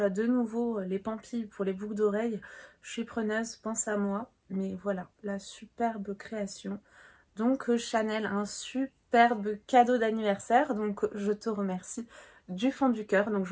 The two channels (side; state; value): both; identical; correlation 1.00